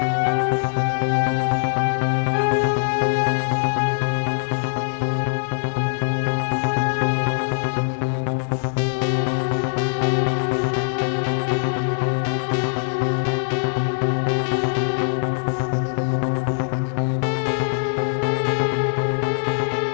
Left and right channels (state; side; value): silent; right; 64 dB below the other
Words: हाँ फ्रेडी बताओ, कंपनी वालों ने क्या बताया? अच्छा, ठीक तरीके से पता किया ना? ओहो, जरा इस विक्रम का नंबर मुझे एसएमएस करो। क्या आखिरी फोन राजेश को किसी विक्रम नाम के आदमी ने किया था। विक्रम? हाँ, और तो और